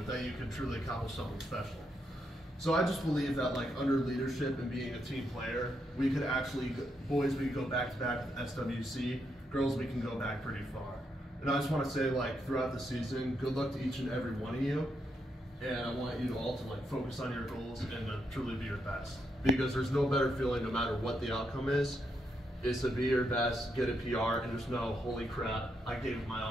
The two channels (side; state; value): both; normal; correlation 0.80